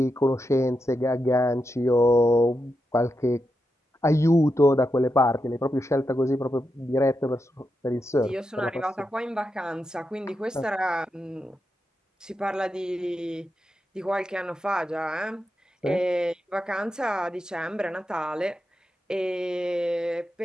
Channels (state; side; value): normal; both; correlation 0.87